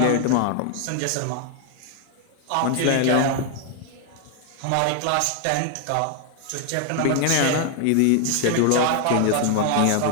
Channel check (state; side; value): different; both; correlation 0.00